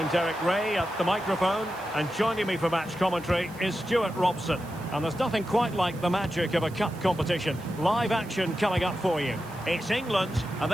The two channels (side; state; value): right; noise; hiss, 22 dB below the sound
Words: Derek Ray at the microphone, and joining me for match commentary is Stuart Robson. And there's nothing quite like the magic of a cup competition. Live action coming up for you. It's England, and